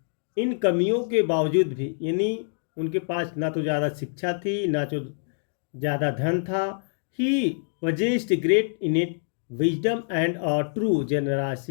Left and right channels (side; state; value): right; silent; digital silence